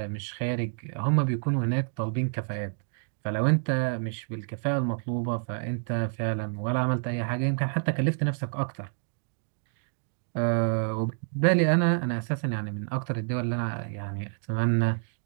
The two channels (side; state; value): left; silent; 58 dB below the other